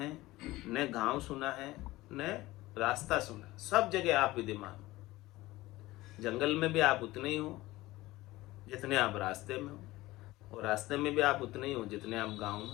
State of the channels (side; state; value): right; quieter; 18.5 dB